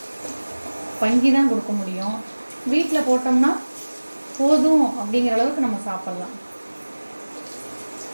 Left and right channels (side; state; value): both; inverted; correlation -1.00